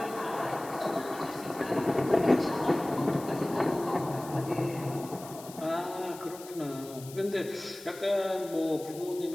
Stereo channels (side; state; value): left; noise; hiss, 17 dB below the sound